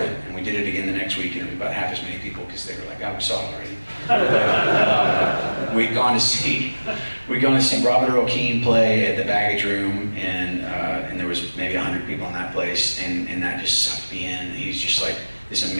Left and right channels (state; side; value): inverted; both; correlation -1.00